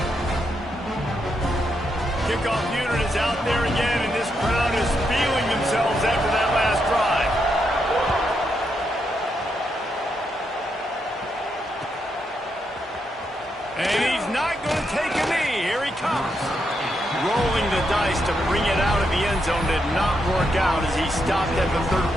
Kickoff unit is out there again, and this crowd is feeling themselves after that last drive. And he's not going to take a knee. Here he comes. Rolling the dice to bring it out of the end zone did not work out as he stopped at the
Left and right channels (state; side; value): normal; both; correlation 0.81